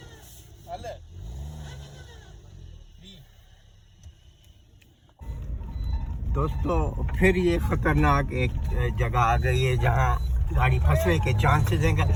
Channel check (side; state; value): both; identical; correlation 1.00